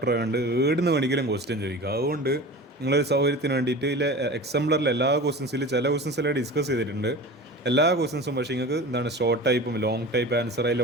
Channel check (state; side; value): normal; both; correlation 0.34